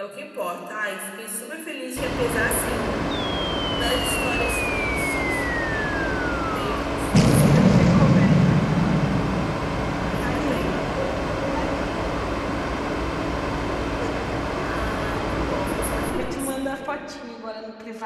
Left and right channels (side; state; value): both; identical; correlation 1.00